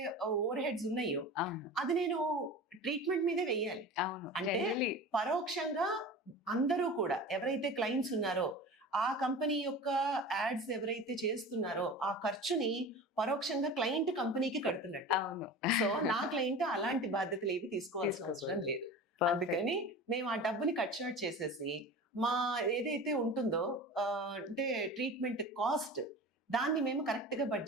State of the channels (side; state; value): both; normal; correlation 0.34